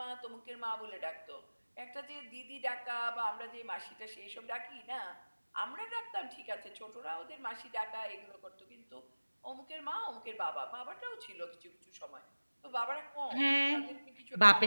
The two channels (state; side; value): inverted; both; correlation -1.00